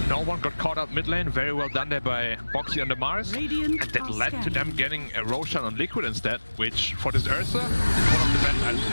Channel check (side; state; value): both; inverted; correlation -1.00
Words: no one got caught out mid lane. Very well done there by Boxy on the Mars. And that led to them getting a Roshan on Liquid instead, which for this Ursa is one of the best items in